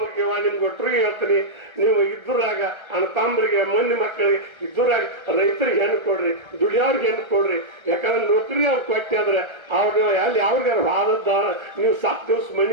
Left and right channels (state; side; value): late; left; 1.3 ms